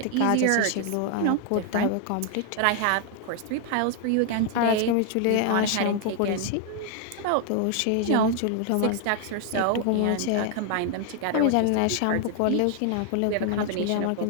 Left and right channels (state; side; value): different; both; correlation 0.00